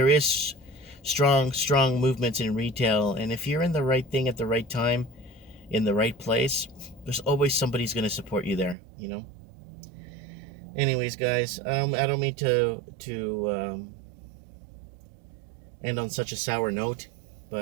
is strong movements in retail, and if you're in the right thing at the right time, in the right place, there's always somebody's going to support you there, Anyways, guys, I don't mean to end on such a sour note,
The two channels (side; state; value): left; drops out; at 8.8 s